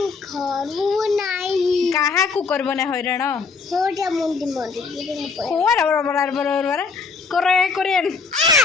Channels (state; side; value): quieter; right; 4.9 dB